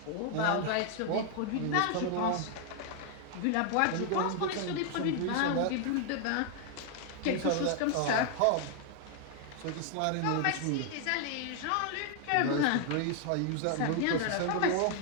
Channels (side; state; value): both; different; correlation 0.00